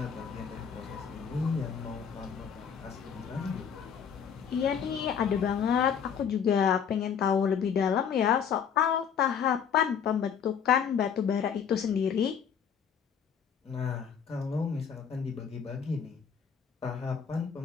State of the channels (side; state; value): right; quieter; 7.4 dB